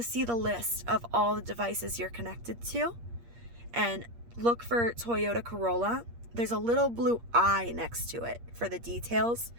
to see the list of all the devices you're connected to, and look for Toyota Corolla. There's a little blue eye next to it for the details.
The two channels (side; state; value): left; late; 8.5 ms